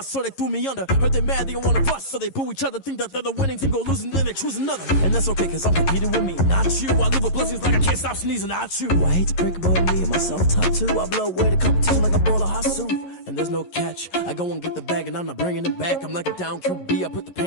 so they threw me under. Heard they mad, they don't wanna bust, so they boo each other. Think that they're the winning team, go losing, then they choose another. And that's okay, cause I'm competing with me, not you. I live with blessings like I can't stop sneezing, not you. I hate to break it, but me and myself top two. I blow away the competition like a bowl of hot soup. And there's no catch. I go and get the bag and I'm not bringing it back. I'm like a down QB, I put the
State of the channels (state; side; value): late; right; 11 ms